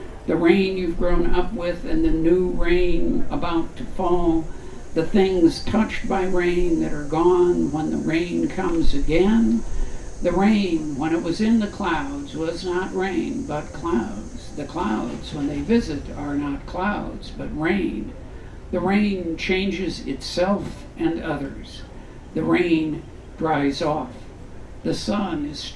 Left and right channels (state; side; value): identical; both; correlation 1.00